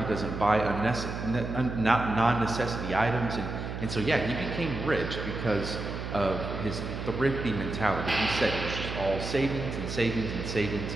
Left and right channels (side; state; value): right; noise; hum, 6 dB below the sound